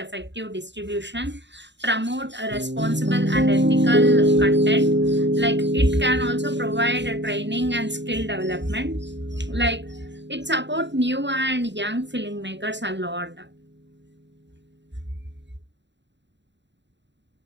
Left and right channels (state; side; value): late; left; 0.52 ms